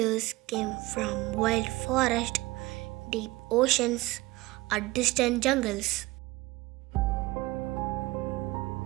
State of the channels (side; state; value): left; quieter; 20.4 dB